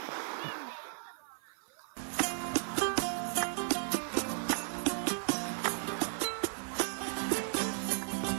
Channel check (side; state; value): left; silent; 54 dB below the other